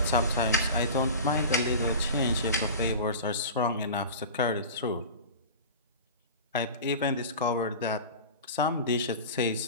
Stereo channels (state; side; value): inverted; both; correlation -0.33